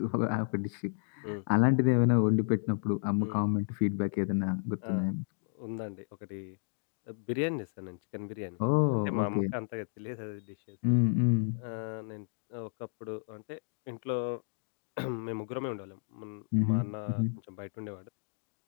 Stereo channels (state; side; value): silent; right; digital silence